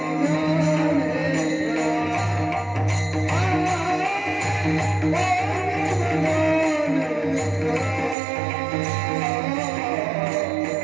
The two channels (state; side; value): drops out; left; at 8.2 s